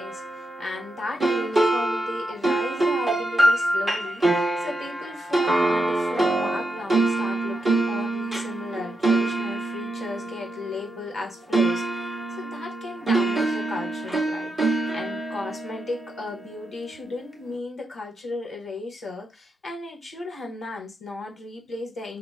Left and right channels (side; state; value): both; normal; correlation 0.85